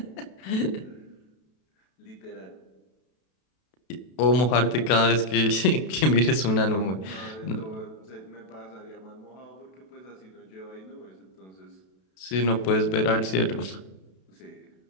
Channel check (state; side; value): late; right; 32 ms